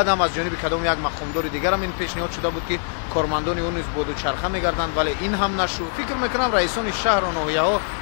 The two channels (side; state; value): right; silent; digital silence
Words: هم از جانب کدام یک مقامدار دیگر هم این پیشنهاد شده بود که کارمندان اون نیز با دوچرخه میگردند، ولی این هم نشد. فکر میکنم رئیسان شهر و ناحیه ها